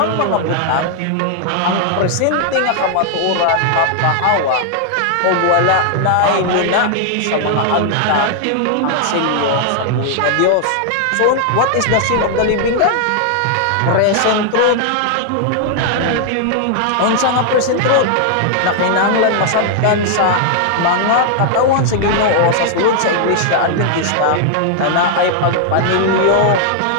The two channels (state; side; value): different; both; correlation 0.00